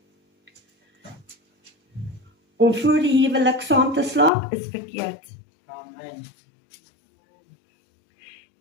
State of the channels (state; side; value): drops out; right; at 4.3 s